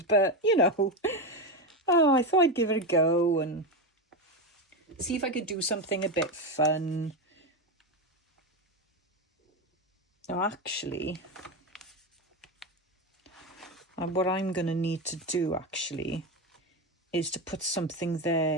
but you know, oh, I thought I'd give it a go and see if I could do something a bit fun. Now actually, what I'm going to need to do actually is to put something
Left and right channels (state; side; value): normal; both; correlation 0.14